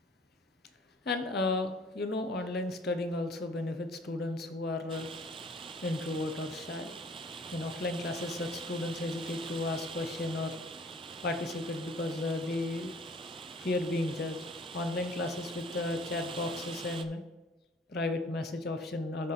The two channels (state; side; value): normal; both; correlation 0.54